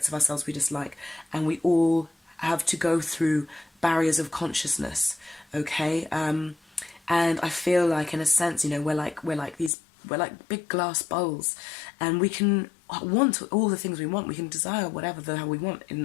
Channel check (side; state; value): right; drops out; at 9.7 s